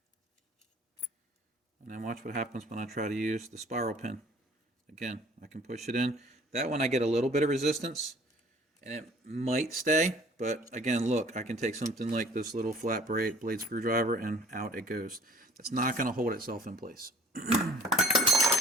And then watch what happens when I try to use the spiral pin. Again, I can push it in. That one I get a little bit of resistance, and it might stay, but again, look, I can take something like this little flat blade screwdriver and out it goes. That's not going to hold itself in place.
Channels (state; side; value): normal; both; correlation 0.51